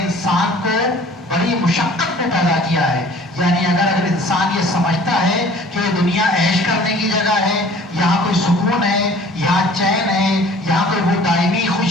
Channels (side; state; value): both; normal; correlation 0.50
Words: انسان کو بڑی مشقت میں پیدا کیا ہے، یعنی اگر انسان یہ سمجھتا ہے کہ یہ دنیا عیش کرنے کی جگہ ہے، یہاں کوئی سکون ہے، یہاں چین ہے، یہاں کوئی وہ دائمی